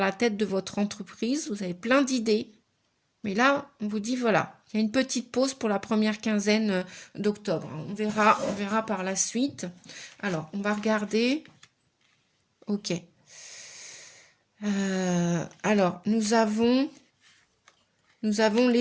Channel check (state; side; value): identical; both; correlation 1.00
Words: tête de votre entreprise, vous avez plein d'idées, mais là, on vous dit voilà, il y a une petite pause pour la première quinzaine d'octobre. On verra par la suite. Alors, on va regarder. Ok. Alors, nous avons